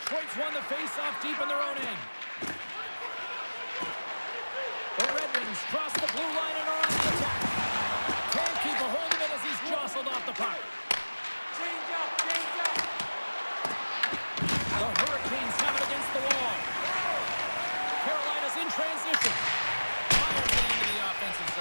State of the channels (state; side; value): inverted; both; correlation -1.00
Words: won the face-off deep in their own end. The Red Wings cross the blue line and are on the attack. Can't keep a hold of it as he's jostled off the puck. The Hurricanes have it against the wall. Carolina's in transition. Fires it into the offensive